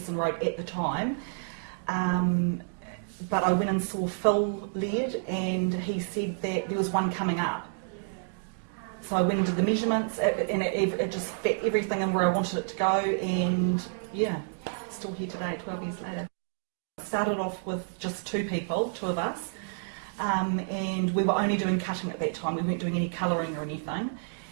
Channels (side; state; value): left; silent; digital silence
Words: Road at the time. But I went and saw Phil Laird, and he said that there was one coming up. So I went into the measurements, and it just fit everything in where I wanted it to go, and yeah, still here today, 12 years later. Started off with just two of us, and we were only doing cutting at that time. We weren't doing any colouring or anything,